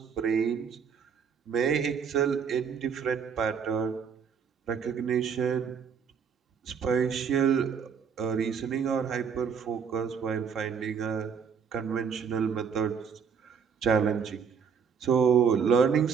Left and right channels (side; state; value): left; quieter; 6.8 dB